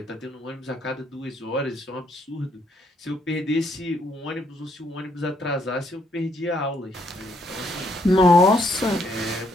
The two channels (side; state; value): both; normal; correlation 0.72